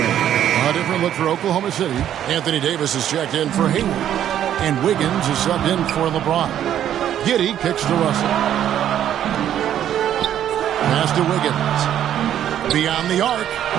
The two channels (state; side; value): quieter; left; 10.7 dB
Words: A different look for Oklahoma City. Anthony Davis is checked in for Hayward. And Wiggins is subbed in for LeBron. Giddey kicks to Russell. Pass to Wiggins. Beyond the arc.